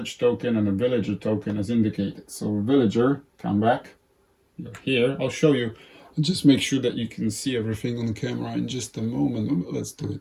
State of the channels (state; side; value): identical; both; correlation 1.00